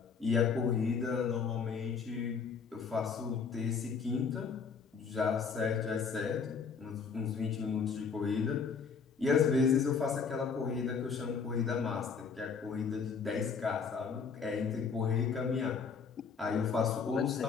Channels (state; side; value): quieter; right; 5.7 dB